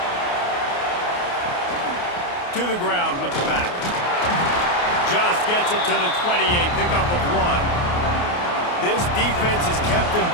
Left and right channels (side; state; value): right; late; 28 ms